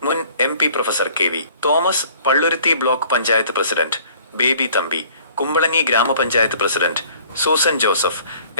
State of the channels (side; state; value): both; inverted; correlation -0.53